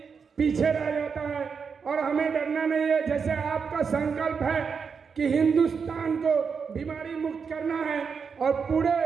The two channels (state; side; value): quieter; left; 5.9 dB